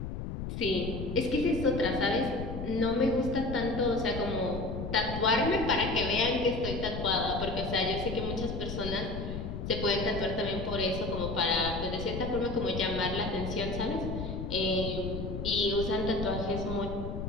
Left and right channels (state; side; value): noise; left; rumble, 5 dB below the sound